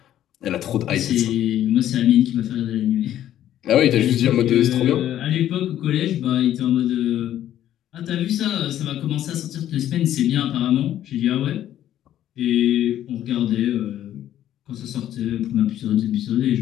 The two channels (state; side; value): quieter; right; 11.8 dB